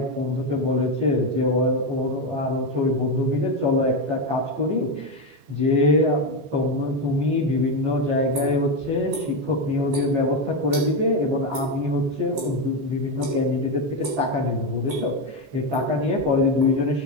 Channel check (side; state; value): left; late; 15 ms